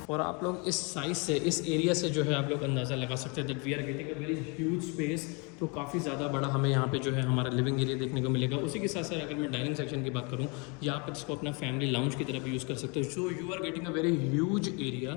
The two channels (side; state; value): right; quieter; 31.7 dB